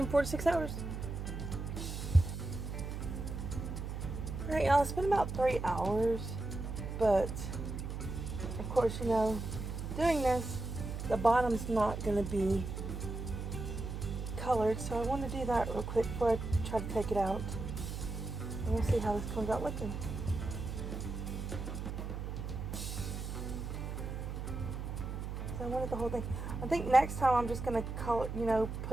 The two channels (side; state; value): right; noise; hum, 5 dB below the sound